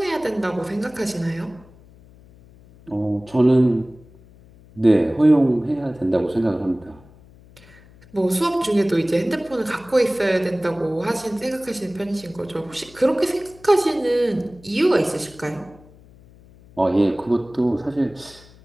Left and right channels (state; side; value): noise; left; hum, 25 dB below the sound